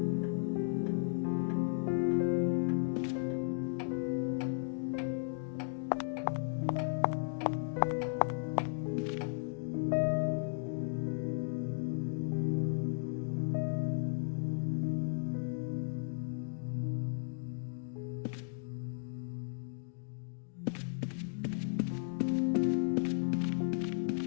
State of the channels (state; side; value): silent; right; digital silence